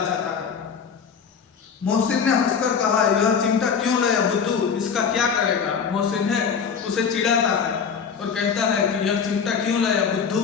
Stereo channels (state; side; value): quieter; right; 6.5 dB